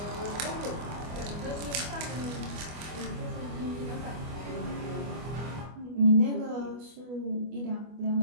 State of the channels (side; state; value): left; late; 25 ms